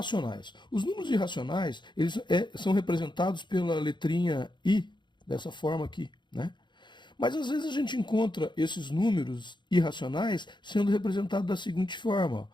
Os números irracionais, eles são representados pela letrinha I, dessa forma aqui, né? Mas às vezes a gente encontra esses números irracionais sendo representados da seguinte forma:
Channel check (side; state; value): right; late; 0.22 ms